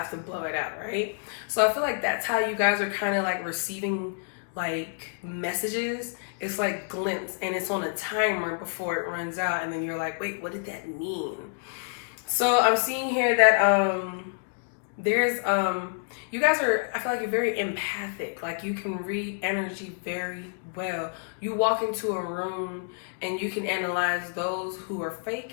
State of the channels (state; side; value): silent; right; digital silence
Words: to blow it out, right? So I feel like that's how you guys are kind of like receiving like messages. It's like glints, and it's on a timer before it runs out, and then you're like, wait, what did that mean? So I'm seeing here that there's you guys are, I feel like you're very empathic. Like you can read energy very well. You walk into a room and you can analyze those who are fake